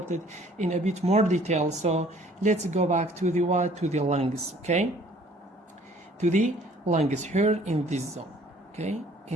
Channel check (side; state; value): both; normal; correlation 0.56